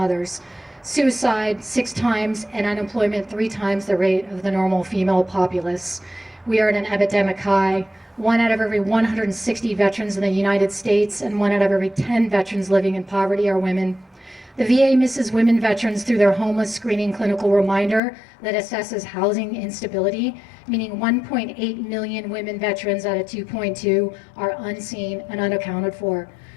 suicide 6 times, and unemployment 3 times the rate of the normal female populace. We are at an epidemic high. 1 out of every 160 veterans in the United States and 1 out of every 10 veterans living in poverty are women. The VA misses women veterans through their homeless screening clinical reminder that assesses housing instability, meaning 1.8 million women veterans out of 2.2 are unseen and unaccounted for.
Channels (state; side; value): drops out; right; at 18.0 s